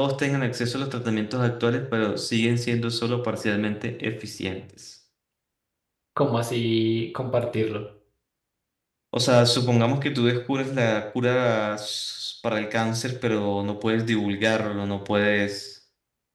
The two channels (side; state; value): both; identical; correlation 1.00